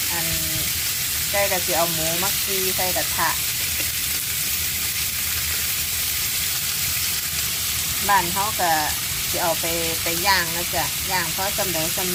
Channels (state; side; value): identical; both; correlation 1.00